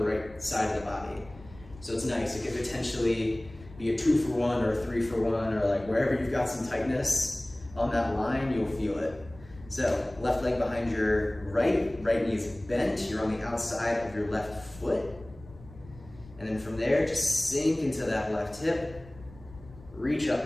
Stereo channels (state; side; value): noise; left; rumble, 20 dB below the sound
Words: right side of the body. So it's nice. It could potentially be a 2-for-1 or a 3-for-1, or like wherever you've got some tightness on that line, you'll feel it. So left leg behind your right knee is bent, you're on the outside of your left foot. And then from there, just sink into that left hip, reach up